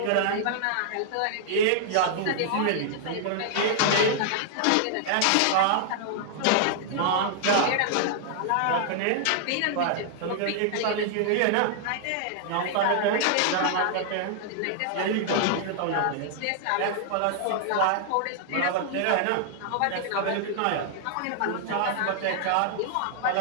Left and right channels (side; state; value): both; different; correlation -0.01